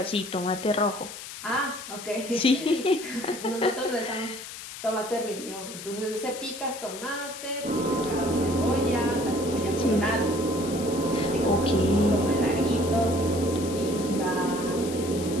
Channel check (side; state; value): left; noise; hiss, 11 dB below the sound